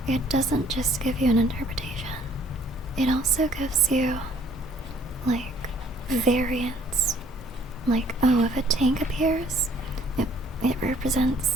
it doesn't just give you an interpretation. It also gives you, like, variants. Like, oh, if a tank appears, it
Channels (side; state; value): both; normal; correlation 0.60